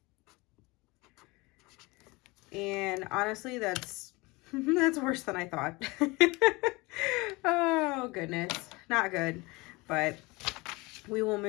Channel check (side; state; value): right; quieter; 24.1 dB